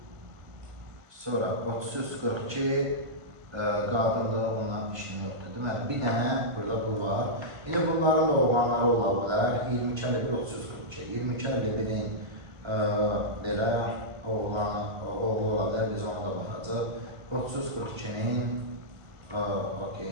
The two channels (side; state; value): left; late; 1.5 ms